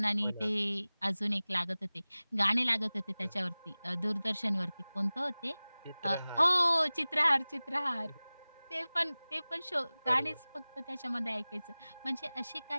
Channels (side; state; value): both; inverted; correlation -0.99